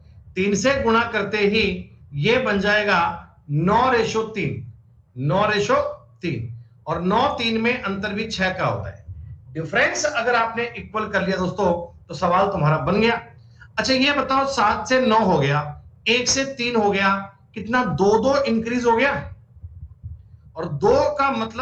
3 से गुणा करते ही ये बन जाएगा 9:3। 9:3, और 9-3 में अंतर भी 6 का होता है। डिफरेंस अगर आपने इक्वल कर लिया दोस्तों, तो सवाल तुम्हारा बन गया। अच्छा ये बताओ, 7 से 9 हो गया, 1 से 3 हो गया, कितना 2-2 इंक्रीज हो गया, और 2 का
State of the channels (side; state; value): both; identical; correlation 1.00